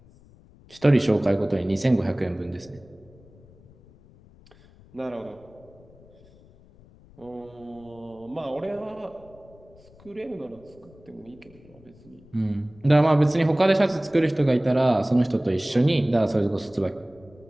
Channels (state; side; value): noise; left; rumble, 25 dB below the sound